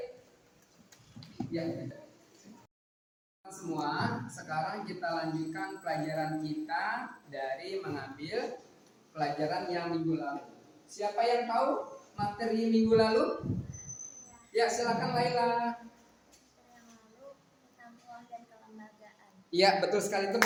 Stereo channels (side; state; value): both; identical; correlation 1.00